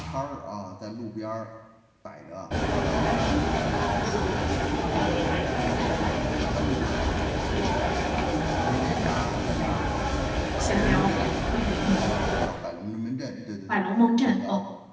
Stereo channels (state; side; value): identical; both; correlation 1.00